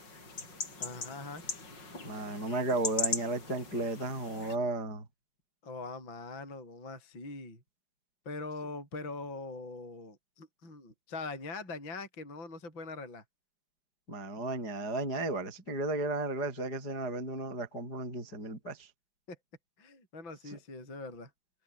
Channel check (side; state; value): right; late; 5.5 ms